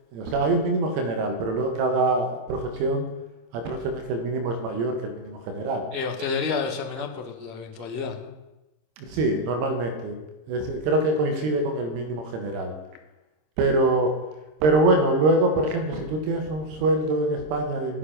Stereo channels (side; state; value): left; late; 26 ms